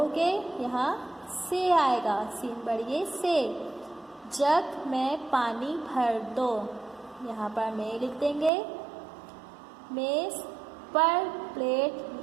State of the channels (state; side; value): drops out; left; at 8.5 s